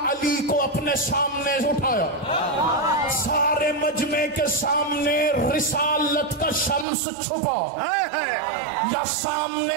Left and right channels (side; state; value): left; drops out; at 6.9 s